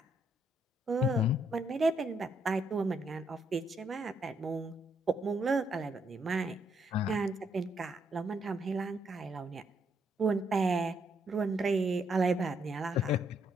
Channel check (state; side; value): normal; both; correlation 0.74